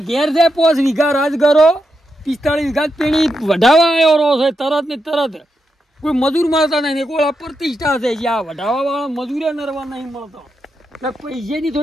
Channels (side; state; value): both; normal; correlation 0.85